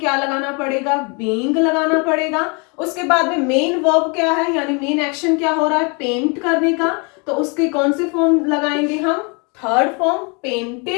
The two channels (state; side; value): quieter; right; 32.9 dB